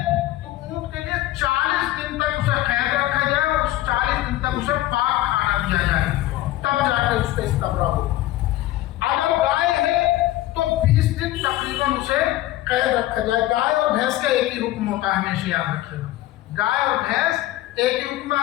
تو اونٹ کے لیے 40 دن تک اسے قید رکھا جائے اور 40 دن تک اسے پاک کھانا دیا جائے، تب جا کے اس کا استبراء ہو۔ اگر گائے ہے تو 20 دن تقریباً اسے قید رکھا جائے۔ گائے اور بھینس کا ایک ہی حکم ہوتا ہے، ہمیشہ یاد رکھیے گا، گائے اور بھینس ایک ہی حکم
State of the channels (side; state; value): right; quieter; 15.6 dB